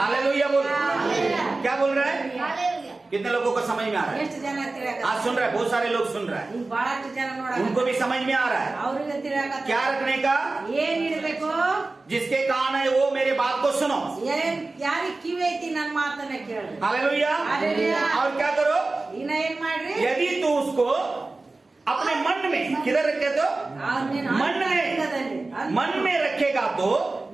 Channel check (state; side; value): quieter; left; 3.3 dB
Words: बोल। हालेलुया। क्या बोल रहा है? हालेलुया। कितने लोगों को समझ में आ रहा है? ಎಷ್ಟು ಜನ ತಿಳಿಯಾಕ आज सुन रहा है, बहुत सारे लोग सुन रहा है, ಈಗ ಬಹಳಷ್ಟು ಜನ ನೋಡಾಕ उनको भी समझ में आ रहा है। ಅವ್ರಿಗೆ ತಿಳಿಯಾಕ क्या रखने का? ಏನ್ ಇಡಬೇಕು जिसके कान है वो मेरे बात को सुनो। ಏನ್ ಯಾರಿಗ್ ಕಿವಿ ಐತಿ ನನ್ ಮಾತನ್ನ ಕೇಳ್ರಿ हालेलुया। हालेलुया। और क्या करो? ಇನ್ನ ಏನ್ ಮಾಡ್ರಿ यदि तू उसको अपने मन में, किधर रखे तो? ಅವ್ರ್ ನೀನ್ मन में, ಅಂತರಂಗದಲ್ಲಿ, मन में रखेगा तो